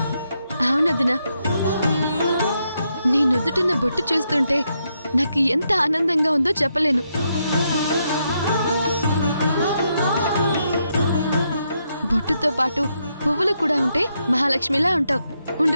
అవునదినా, నీ నుదుటిన బొట్టు చూస్తుంటే నాకు ఎంత ఆనందంగా ఉందో చెప్పలేను. బొట్టుతో పాటు పువ్వులు కూడా ఉంటే మహాలక్ష్మిలా ఉంటావు.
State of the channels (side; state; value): both; inverted; correlation -0.80